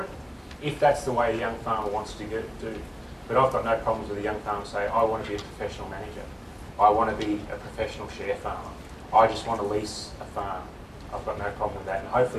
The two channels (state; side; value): identical; both; correlation 1.00